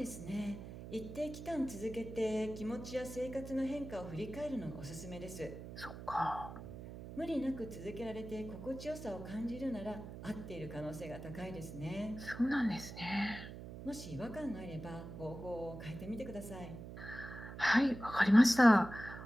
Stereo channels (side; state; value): right; noise; hum, 11 dB below the sound